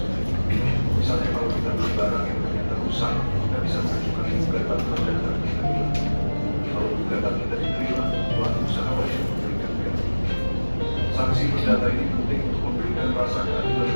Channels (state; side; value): inverted; both; correlation -1.00